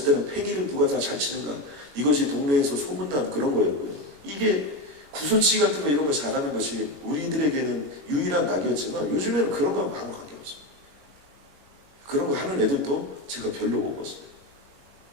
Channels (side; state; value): left; late; 21 ms